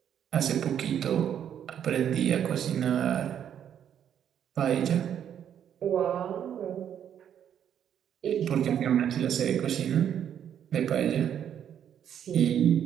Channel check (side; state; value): left; quieter; 9.3 dB